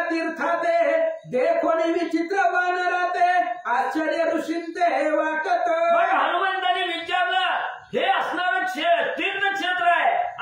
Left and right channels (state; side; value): identical; both; correlation 1.00